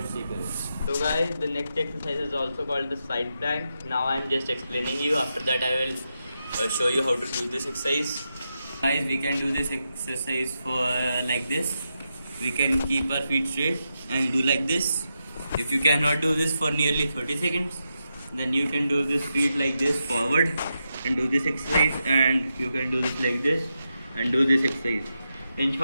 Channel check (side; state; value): both; inverted; correlation -0.86